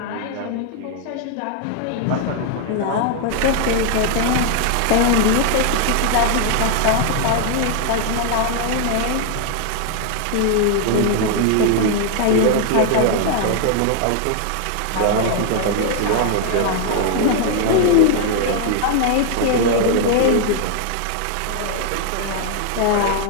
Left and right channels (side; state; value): both; different; correlation 0.00